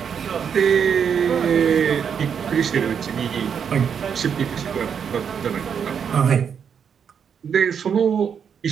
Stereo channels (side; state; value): left; quieter; 7.4 dB